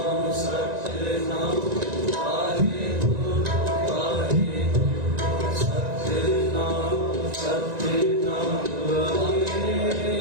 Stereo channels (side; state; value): left; late; 1.9 ms